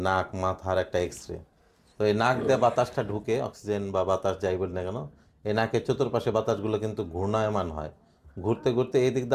নাক মাথার একটা এক্স রে। তো এই নাক দিয়ে বাতাসটা ঢুকে, অক্সিজেন বা বাতাস যাই বলি না কেন, এই নাকের চতুর্পাশে বাতাসগুলো কিন্তু ঘূর্ণায়মান হয়। ঘুরতে ঘুরতে এই দিক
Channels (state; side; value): identical; both; correlation 1.00